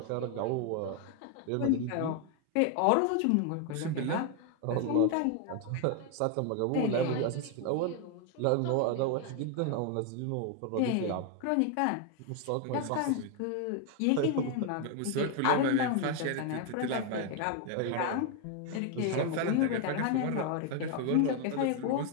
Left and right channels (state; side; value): different; both; correlation 0.01